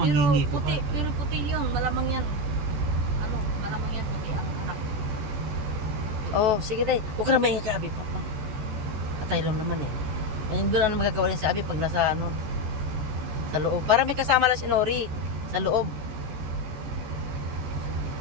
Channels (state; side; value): late; left; 14 ms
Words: ko pa. Pero puti yun, malamang yan. Ano, malamang yan puti ang anak. Oh, sige day. Huwag ka na maingay ka, Abi. Papa. Patay lang naman eh. Hindi ko lang magagawa rin sa Abi pag nasa ano, sa loob. Para may kasama lang si Nori sa loob.